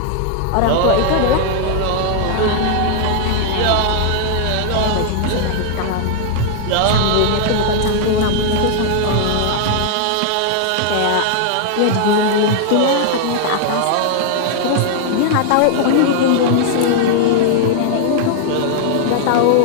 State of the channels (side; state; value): both; different; correlation -0.01